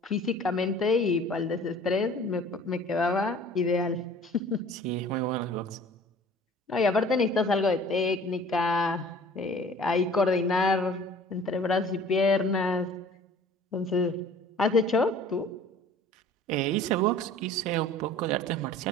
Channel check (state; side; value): normal; both; correlation 0.48